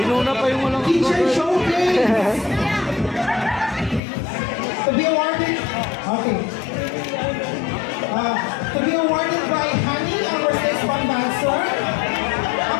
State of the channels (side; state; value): right; drops out; at 4.0 s